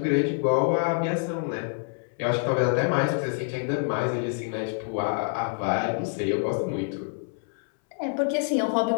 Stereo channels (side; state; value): right; silent; 60 dB below the other